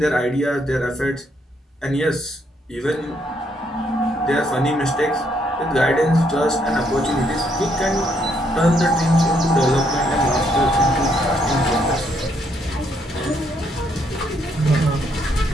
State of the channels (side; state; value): both; normal; correlation 0.72